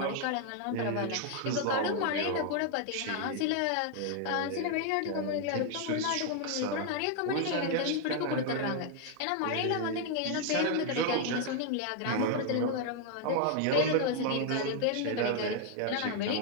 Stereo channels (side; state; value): both; different; correlation 0.00